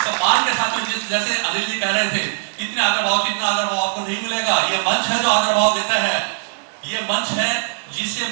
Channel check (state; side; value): silent; left; digital silence